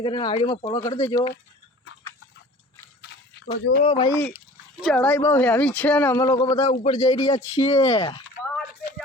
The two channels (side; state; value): both; normal; correlation 0.44